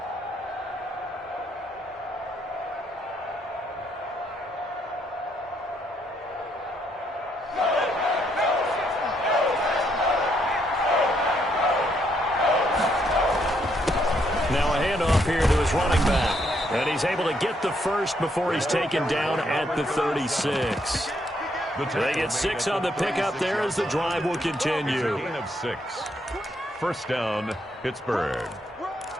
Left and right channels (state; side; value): normal; both; correlation 0.73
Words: Now a handoff here to his running back. And he's able to get the first before he's taken down at the 36. They get 6 on the pickup there as the drive will continue. Gain of 6. 1st down, Pittsburgh.